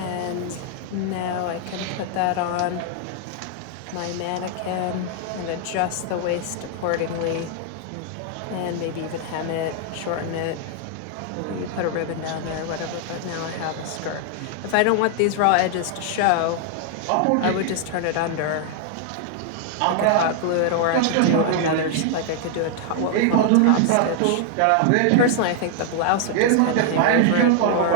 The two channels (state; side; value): different; both; correlation 0.00